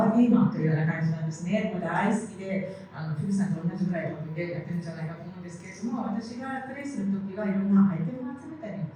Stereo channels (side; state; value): both; identical; correlation 1.00